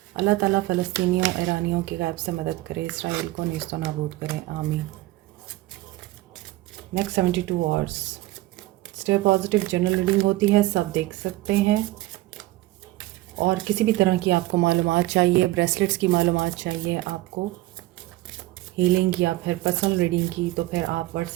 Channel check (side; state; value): left; quieter; 17.9 dB